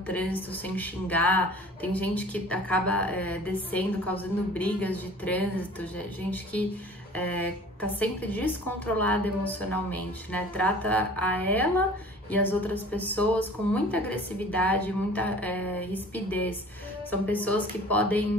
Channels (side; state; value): both; normal; correlation 0.46